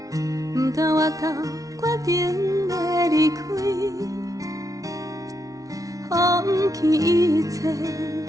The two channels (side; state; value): left; late; 0.17 ms